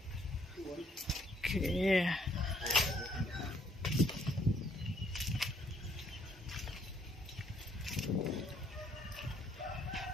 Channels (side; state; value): both; normal; correlation 0.67